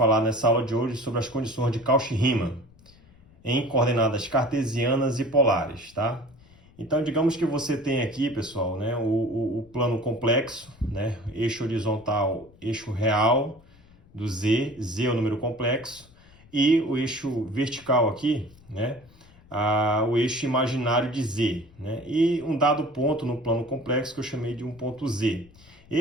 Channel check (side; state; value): left; noise; rumble, 26 dB below the sound